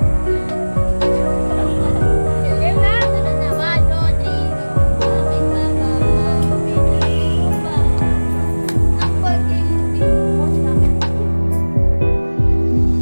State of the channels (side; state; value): both; inverted; correlation -1.00